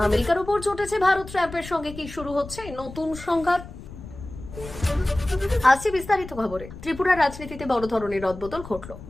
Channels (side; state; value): left; noise; rumble, 14 dB below the sound